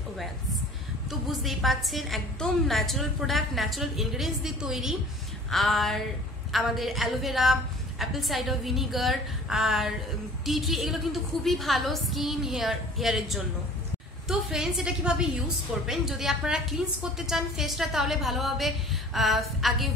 oils. তো বুঝতেই পাচ্ছেন একদম ন্যাচারাল প্রোডাক্ট, ন্যাচারাল ইনগ্রিডিয়েন্টস দিয়ে তৈরি। আর আমাদের অ্যালোভেরা, অ্যাপল সাইডার ভিনিগার আর টি ট্রি এগুলো কিন্তু খুবই ভালো স্কিন, হেয়ারের জন্য। তো ফ্রেন্ডস এটা কিভাবে ইউজ করবেন, যদি আপনারা ক্লিনস করতে চান ফেসটা, তাহলে ভালোভাবে আগে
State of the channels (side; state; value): both; normal; correlation 0.47